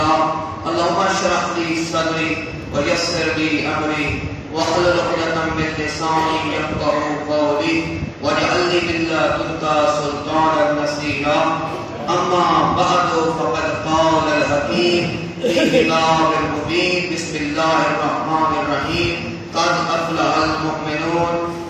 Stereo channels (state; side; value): identical; both; correlation 1.00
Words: اللهم اشرح لي صدري ويسر لي أمري واحلل عقدة من لساني يفقهوا قولي واجعل لي من لدنك سلطانا نصيرا. أما بعد فقد قال الحكيم في كتاب المبين بسم الله الرحمن الرحيم قد أفلح المؤمنون